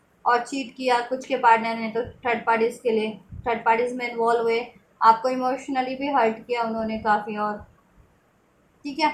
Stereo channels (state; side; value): identical; both; correlation 1.00